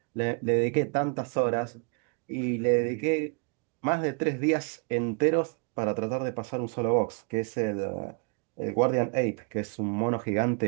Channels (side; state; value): left; quieter; 35.8 dB